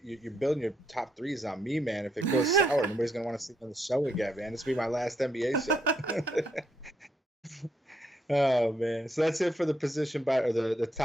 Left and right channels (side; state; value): both; normal; correlation 0.76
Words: You're building your top threes on me, man. If it goes sour, nobody's gonna want to see on the show again, man. This will be my last NBA show. Oh man, so that's it for the position or the